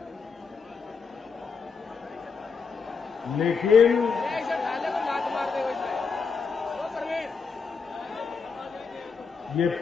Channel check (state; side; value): quieter; right; 5.3 dB